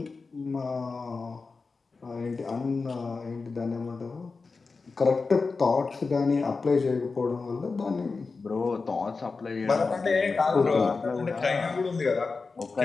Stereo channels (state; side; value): quieter; right; 4.3 dB